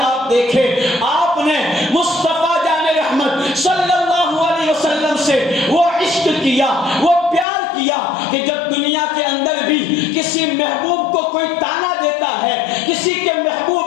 آپ دیکھیں آپ نے مصطفیٰ جان رحمت صلی اللہ علیہ وسلم سے وہ عشق کیا، وہ پیار کیا کہ جب دنیا کے اندر بھی کسی محبوب کو کوئی تانا دیتا ہے، کسی کے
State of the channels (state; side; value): drops out; right; at 7.5 s